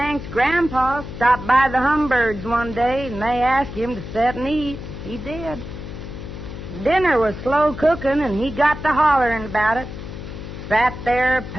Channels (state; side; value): noise; left; hum, 10 dB below the sound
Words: grandpa stopped by the Humbirds one day, and they asked him to sit and eat. He did. Dinner was slow cooking, and he got to hollering about it. Sat there